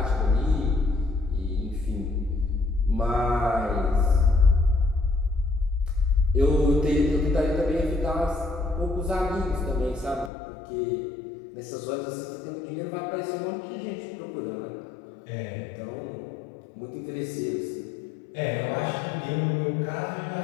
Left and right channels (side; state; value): right; drops out; at 10.3 s